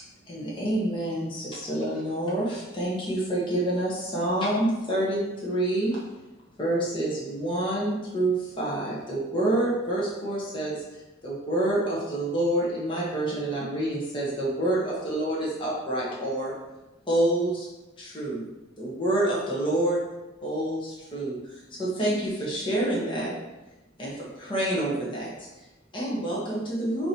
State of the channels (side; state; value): both; normal; correlation 0.47